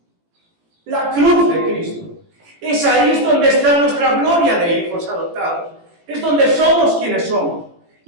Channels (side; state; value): left; late; 18 ms